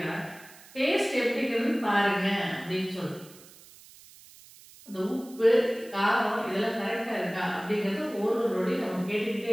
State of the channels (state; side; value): noise; right; hiss, 22 dB below the sound